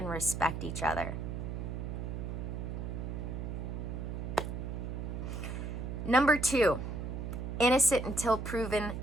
respect each other. Number two, innocent until proven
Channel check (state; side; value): noise; right; hum, 4 dB below the sound